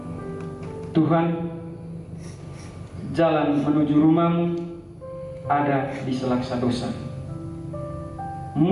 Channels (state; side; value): identical; both; correlation 1.00